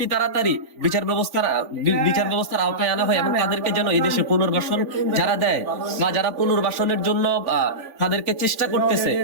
তাড়াতাড়ি বিচার ব্যবস্থার আওতায় আনা হয় এবং তাদেরকে যেন এই দেশে পুনর্বাসন যারা দেয় বা যারা পুনর্বাসনের জন্য তাদেরকে চেষ্টা করতেছে,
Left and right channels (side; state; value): left; late; 3.5 ms